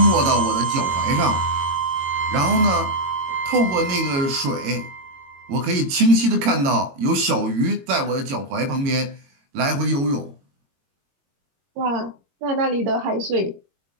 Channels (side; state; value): left; late; 22 ms